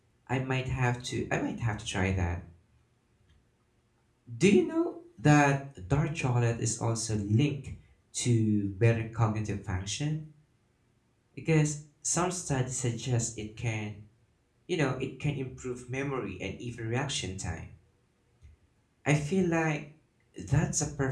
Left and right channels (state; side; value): identical; both; correlation 1.00